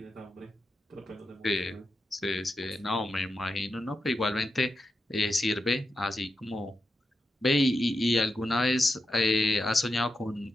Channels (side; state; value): both; normal; correlation 0.87